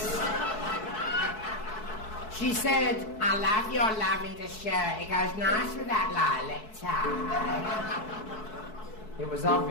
She said, I love your lavender shirt. It goes nice with that lilac tie. It was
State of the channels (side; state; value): right; late; 4.6 ms